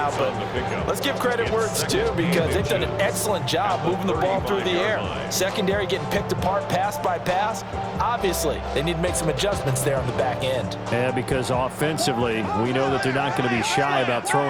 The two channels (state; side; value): identical; both; correlation 1.00